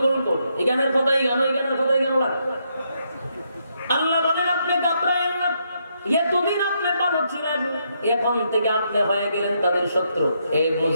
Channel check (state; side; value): inverted; both; correlation -0.77